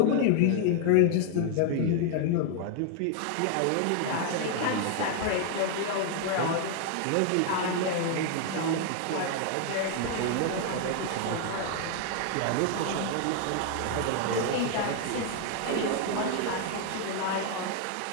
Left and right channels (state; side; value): different; both; correlation 0.00